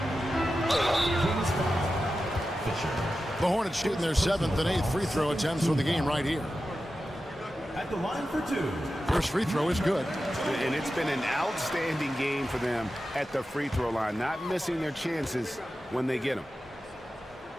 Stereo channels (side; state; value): both; normal; correlation 0.92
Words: The Hornets shooting their 7th and 8th free throw attempts for the game right here. At the line for 2. First free throw is good. And it's been an outstanding game for them at the free throw line, not missing their chances when they get them.